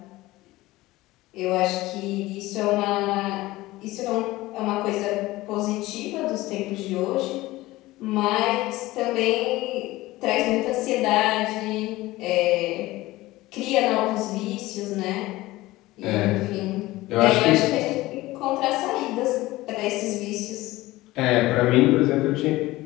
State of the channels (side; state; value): right; quieter; 18.4 dB